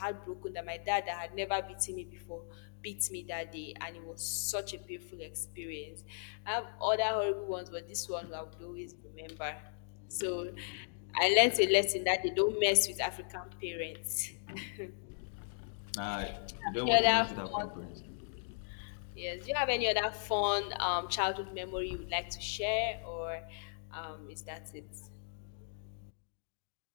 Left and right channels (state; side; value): silent; right; digital silence